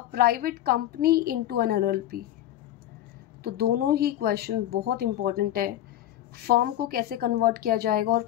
private company into an LLP। तो दोनों ही क्वेश्चन बहुत इंपॉर्टेंट है, फर्म को कैसे कन्वर्ट किया जाएगा और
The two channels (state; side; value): quieter; right; 12.8 dB